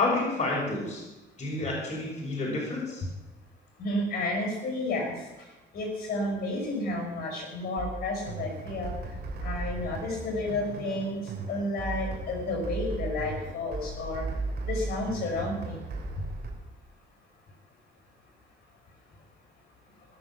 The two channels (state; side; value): normal; both; correlation 0.40